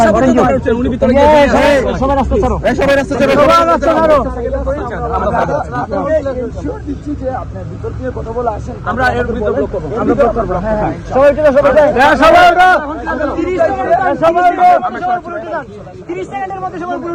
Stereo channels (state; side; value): identical; both; correlation 1.00